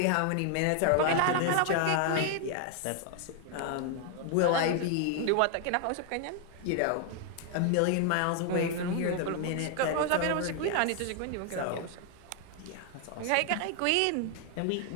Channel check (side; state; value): both; different; correlation 0.00